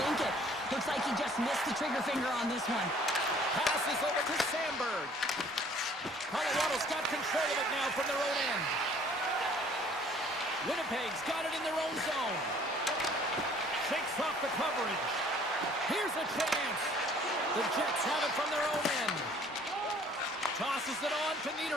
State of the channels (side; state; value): both; normal; correlation 0.56